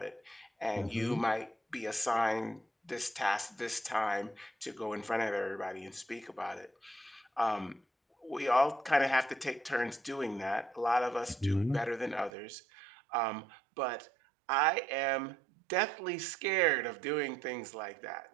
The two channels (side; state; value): left; drops out; at 12.3 s